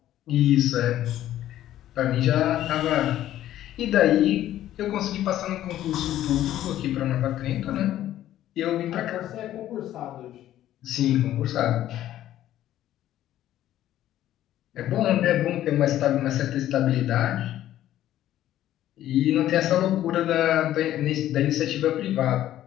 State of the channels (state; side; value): quieter; right; 12.8 dB